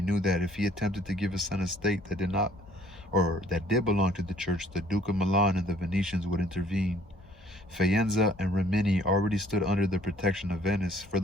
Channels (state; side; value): normal; both; correlation 0.59